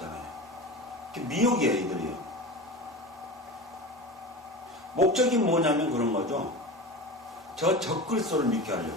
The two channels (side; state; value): both; normal; correlation 0.29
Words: 미혹이에요, 이들이요. 목적이 뭐냐면 그런 거죠. 저 적그리스도를 믿게